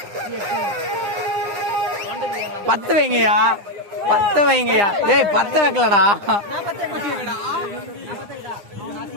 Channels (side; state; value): left; late; 9.9 ms